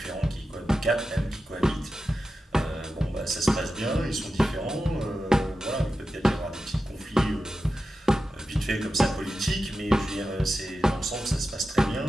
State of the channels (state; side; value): normal; both; correlation 0.92